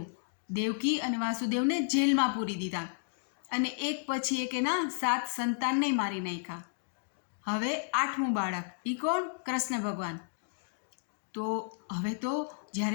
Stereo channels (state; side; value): silent; right; digital silence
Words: દેવકી અને વાસુદેવને જેલમાં પૂરી દીધા અને એક પછી એક એના 7 સંતાનને મારી નાખ્યા. હવે 8મું બાળક, એ કોણ? કૃષ્ણ ભગવાન. તો હવે તો